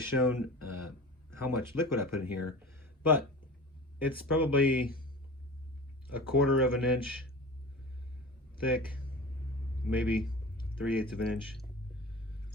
how much liquid I put in here, but it's probably 1/4 of an inch thick, maybe 3/8 of an inch.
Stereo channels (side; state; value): both; normal; correlation 0.35